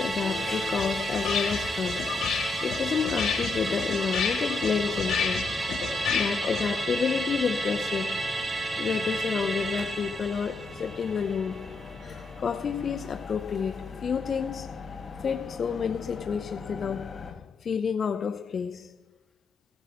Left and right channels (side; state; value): right; quieter; 3.6 dB